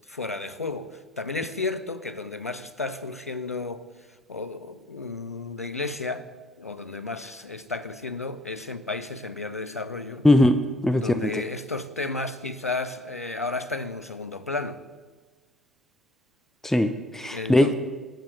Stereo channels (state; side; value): normal; both; correlation 0.62